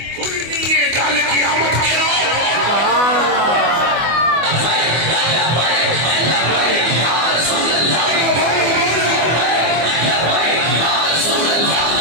کھلنی ہے گل قیامت کے روز۔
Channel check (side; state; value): left; late; 24 ms